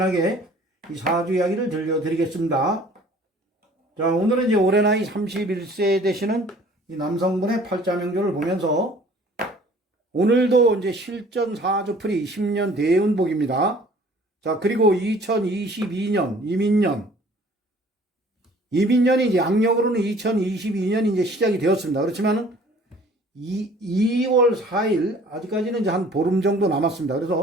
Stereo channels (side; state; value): both; normal; correlation 0.52